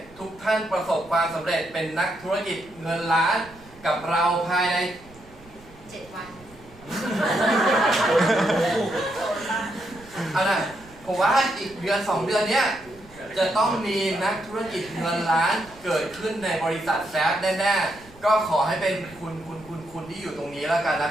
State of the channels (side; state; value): right; noise; rumble, 23 dB below the sound